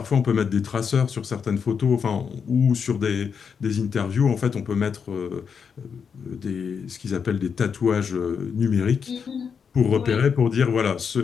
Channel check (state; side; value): quieter; right; 6.5 dB